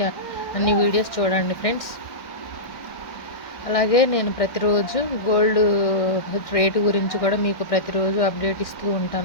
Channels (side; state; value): right; late; 1.6 ms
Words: అన్ని వీడియోస్ చూడండి ఫ్రెండ్స్. అలాగే నేను ప్రతిరోజు గోల్డ్ రేటు గురించి కూడా మీకు ప్రతిరోజు అప్డేట్ ఇస్తూ